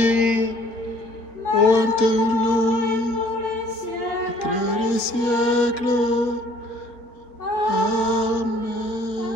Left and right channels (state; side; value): late; right; 4.2 ms